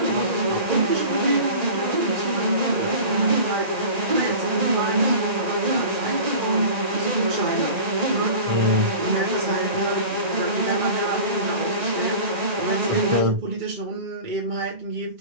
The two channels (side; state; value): left; late; 1.9 ms